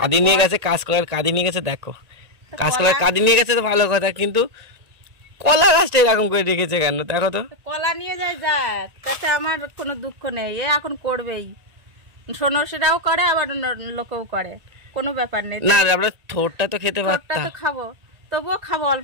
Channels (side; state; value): left; late; 1.8 ms